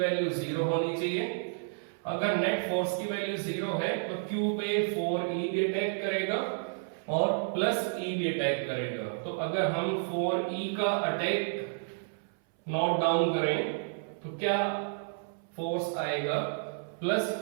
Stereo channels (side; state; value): left; silent; 57 dB below the other